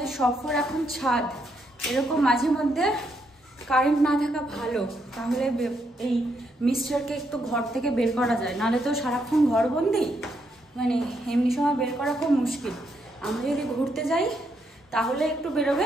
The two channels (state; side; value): normal; both; correlation 0.77